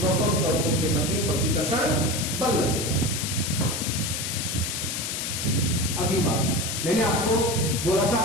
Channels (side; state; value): left; noise; hiss, 3 dB below the sound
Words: प्रोटॉन के मध्य प्रतिकर्षण बल लगेगा। अगली बात, मैंने आपको बोला था